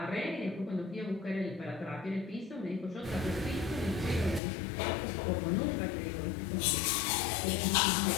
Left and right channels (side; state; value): right; drops out; at 4.4 s